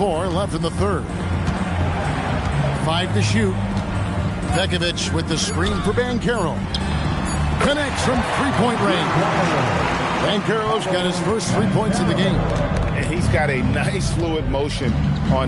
left in the third. 5 to shoot. Pekovic with the screen for Banchero. Connects from three-point range. Banchero's got his first 3 points of the game. And he's got a nice fluid motion on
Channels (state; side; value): identical; both; correlation 1.00